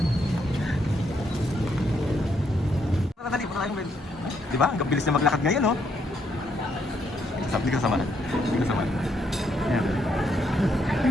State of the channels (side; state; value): both; normal; correlation 0.74